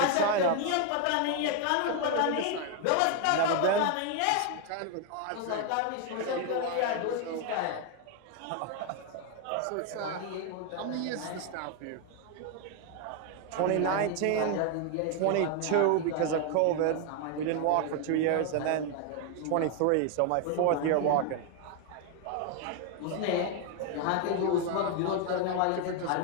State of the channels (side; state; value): both; different; correlation 0.00